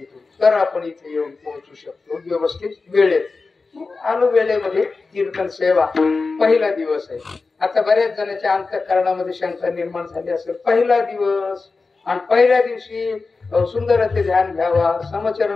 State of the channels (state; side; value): quieter; right; 4.1 dB